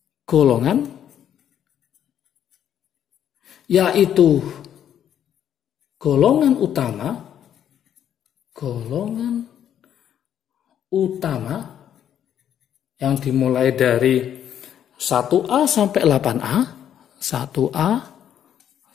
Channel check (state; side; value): quieter; right; 9.9 dB